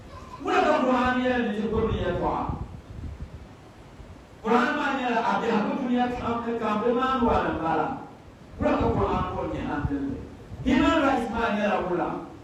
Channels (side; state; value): both; identical; correlation 1.00